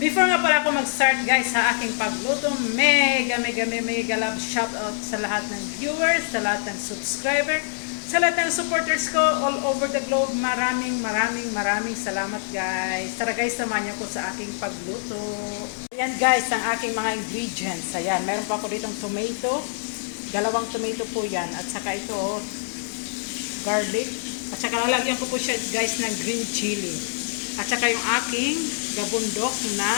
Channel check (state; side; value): silent; right; digital silence